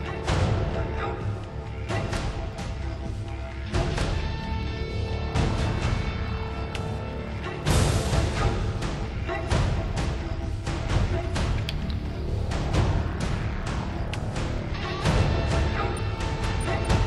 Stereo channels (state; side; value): identical; both; correlation 1.00